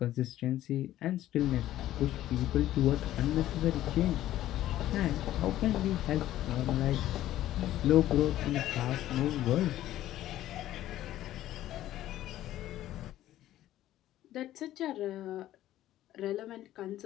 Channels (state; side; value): quieter; right; 13.6 dB